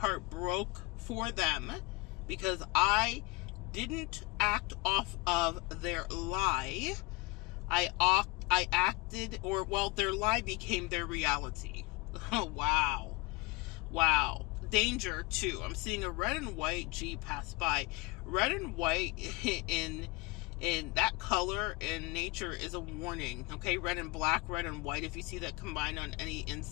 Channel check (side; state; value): right; quieter; 24.7 dB